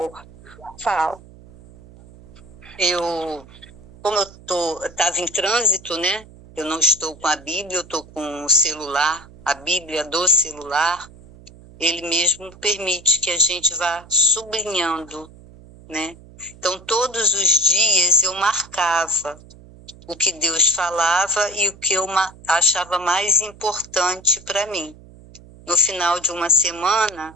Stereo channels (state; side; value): noise; right; hum, 21 dB below the sound